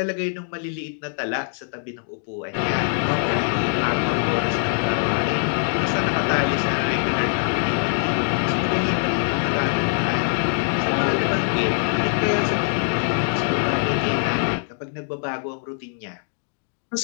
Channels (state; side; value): silent; right; 63 dB below the other